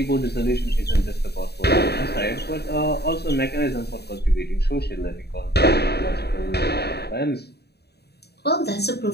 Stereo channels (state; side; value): late; right; 0.48 ms